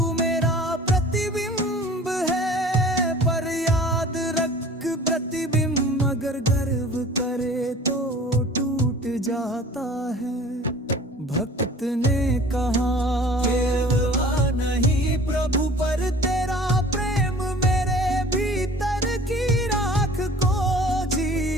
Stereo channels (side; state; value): both; normal; correlation 0.46